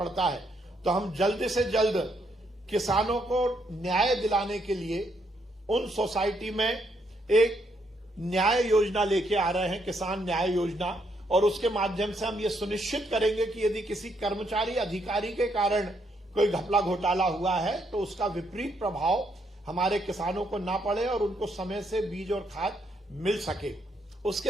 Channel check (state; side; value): normal; both; correlation 0.75